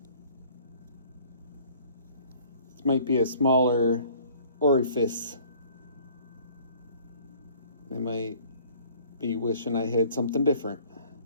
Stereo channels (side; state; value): both; inverted; correlation -0.54